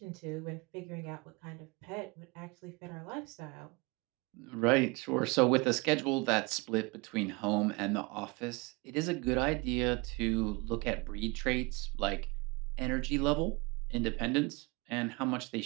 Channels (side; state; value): left; quieter; 26.4 dB